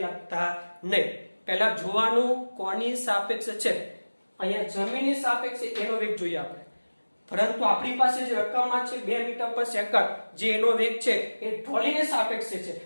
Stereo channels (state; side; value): inverted; both; correlation -1.00